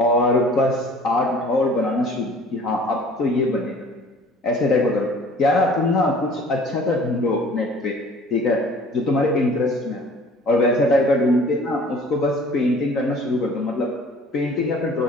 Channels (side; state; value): both; normal; correlation 0.50